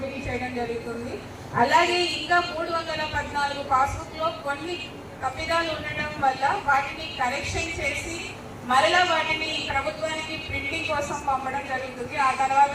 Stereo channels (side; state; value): both; identical; correlation 1.00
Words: చేయడం జరుగుతుంది. అలాగే ఇంకా 314 పాస్బుక్లో కొన్ని తప్పిదాలు ఉండడం వల్ల వాటిని కరెక్షన్ చేసి మరలా వాటిని ప్రభుత్వానికి ప్రింటింగ్ కోసం పంపడం జరుగుతుంది. ఆ తర్వాత